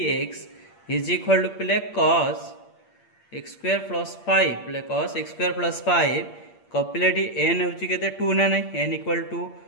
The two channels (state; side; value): late; right; 8.6 ms